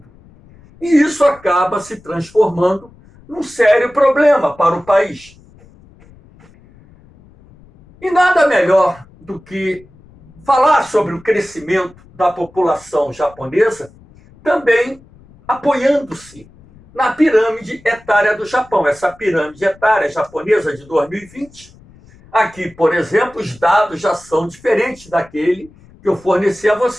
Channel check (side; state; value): left; noise; rumble, 26 dB below the sound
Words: E isso acaba se transformando num sério problema para o país. E nada melhor do que falar sobre o crescimento da população japonesa, também apoiando-se na pirâmide etária do Japão. Essa pirâmide etária japonesa de 2020, aqui, por exemplo, os dados já são diferentes daquele que eu forneci a